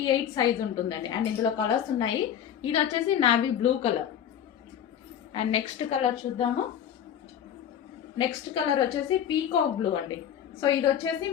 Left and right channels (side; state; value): right; quieter; 9.4 dB